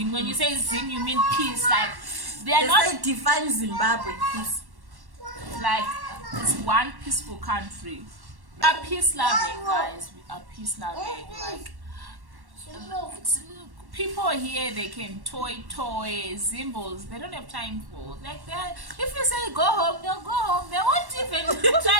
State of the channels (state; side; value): late; left; 1.1 ms